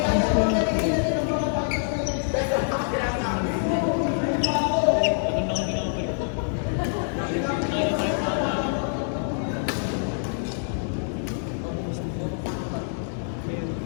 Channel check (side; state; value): right; silent; digital silence